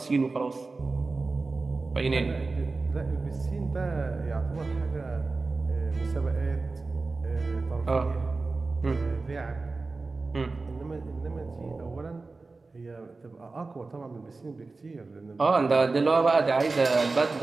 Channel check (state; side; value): quieter; left; 3.7 dB